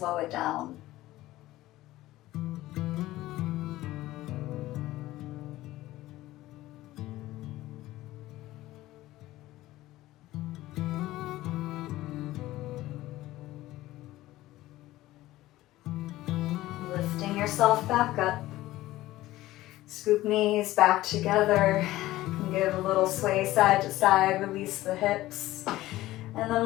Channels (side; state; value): right; quieter; 16.5 dB